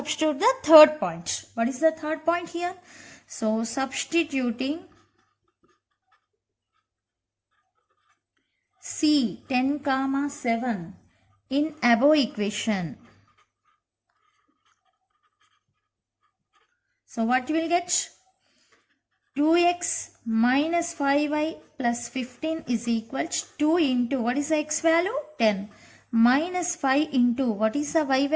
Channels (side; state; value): both; identical; correlation 1.00